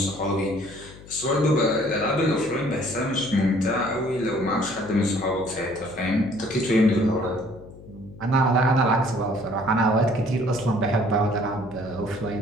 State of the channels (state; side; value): noise; left; hum, 19 dB below the sound